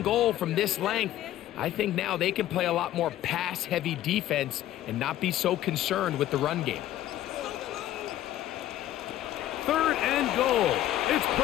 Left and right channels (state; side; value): quieter; right; 13.3 dB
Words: goal from this length. I think now they can play a lot more pass-heavy defense and not be so concerned with the run game. 3rd and goal. It's